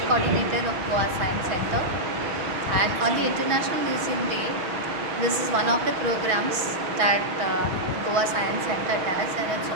coordinator of Goa Science Center. And on the International Museum Day, this is one of the programs that Goa Science Center does, and it's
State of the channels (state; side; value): late; left; 6.2 ms